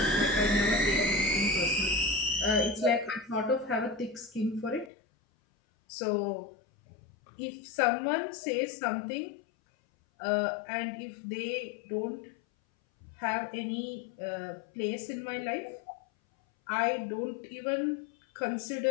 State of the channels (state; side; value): drops out; right; at 4.9 s